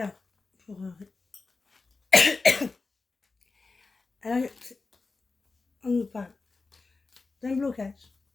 pour alors, on nous parle d'un blocage.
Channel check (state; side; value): quieter; right; 3.9 dB